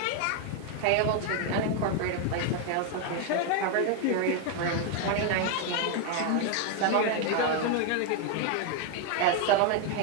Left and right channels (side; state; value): both; different; correlation 0.01